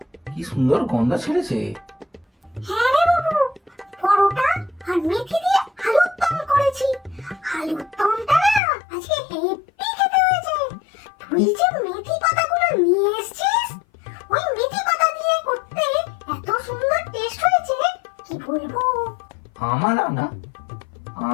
কি সুন্দর গন্ধ ছেড়েছে। হ্যাঁ রে বাবু, পরোটা আর মেথি দিয়ে আলুর দম করেছি। আলুর দমটা না আজকে হেব্বি খেতে হয়েছে। তুই যে মেথি পাতাগুলো নিয়ে এসেছিস, ওই মেথি পাতা দিয়ে করতে এত সুন্দর টেস্ট হয়েছে, কি বলবো। আমার রান্না?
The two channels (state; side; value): drops out; right; at 8.6 s